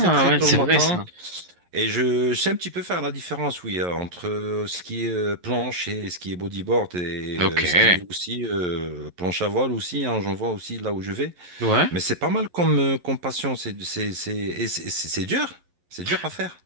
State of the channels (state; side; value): late; left; 11 ms